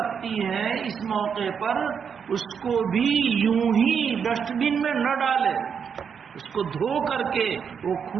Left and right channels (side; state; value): left; quieter; 6.9 dB